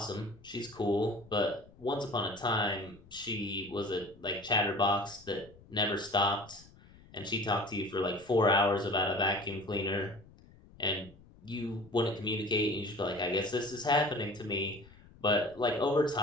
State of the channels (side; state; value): left; noise; rumble, 24 dB below the sound